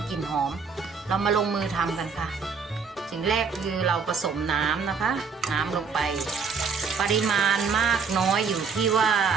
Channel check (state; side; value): quieter; left; 5.5 dB